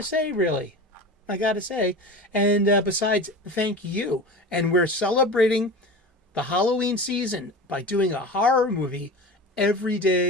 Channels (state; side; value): normal; both; correlation 0.32